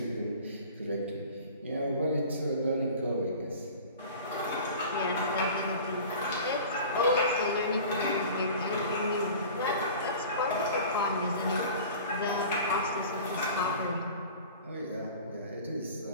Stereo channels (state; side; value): inverted; both; correlation -0.40